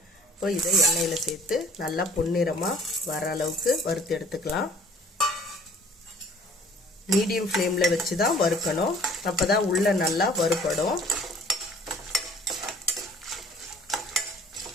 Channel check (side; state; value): both; normal; correlation 0.52